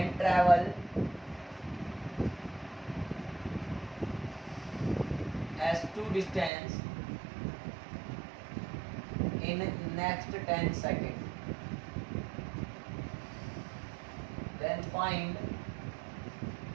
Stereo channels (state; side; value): drops out; left; at 6.5 s